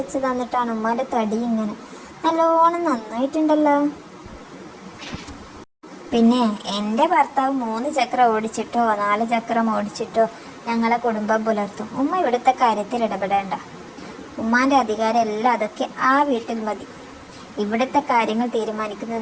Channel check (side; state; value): both; identical; correlation 1.00